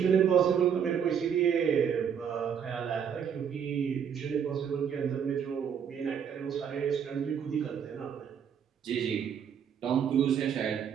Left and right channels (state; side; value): quieter; left; 7.8 dB